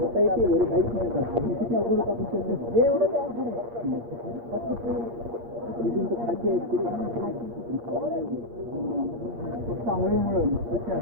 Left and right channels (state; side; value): late; left; 8.6 ms